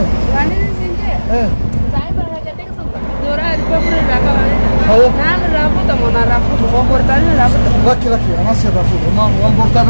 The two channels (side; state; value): both; inverted; correlation -1.00